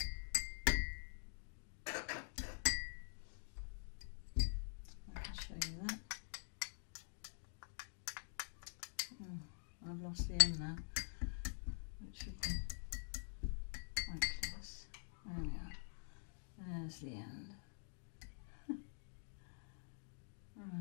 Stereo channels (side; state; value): right; silent; digital silence